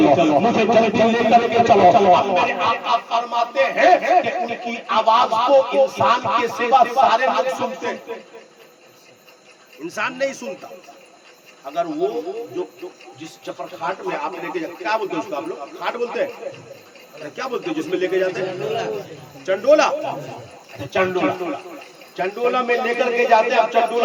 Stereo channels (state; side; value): identical; both; correlation 1.00